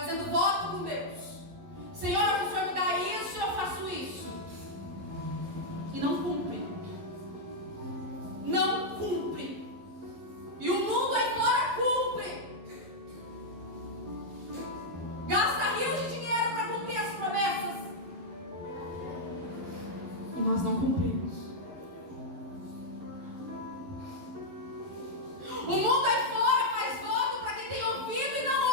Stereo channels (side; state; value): left; late; 11 ms